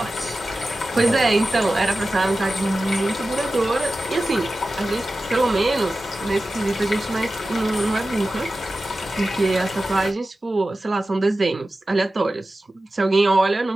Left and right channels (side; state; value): both; normal; correlation 0.94